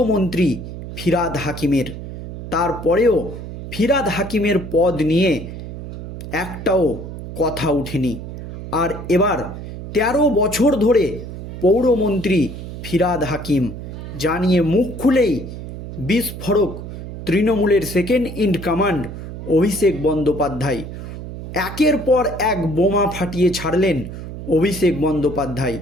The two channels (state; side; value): noise; right; hum, 10 dB below the sound